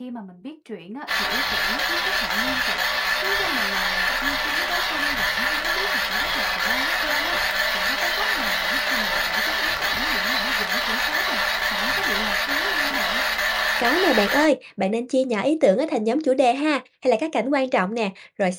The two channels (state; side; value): identical; both; correlation 1.00